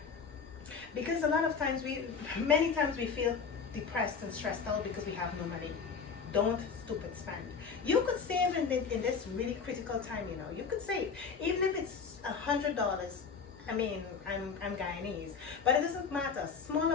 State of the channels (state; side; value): quieter; right; 5.7 dB